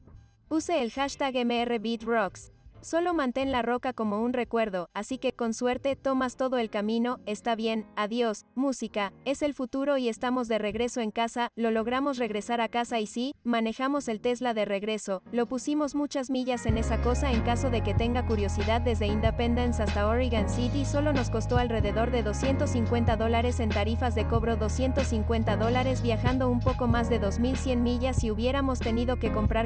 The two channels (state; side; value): identical; both; correlation 1.00